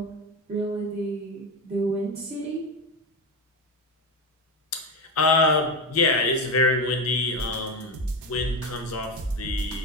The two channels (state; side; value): normal; both; correlation 0.17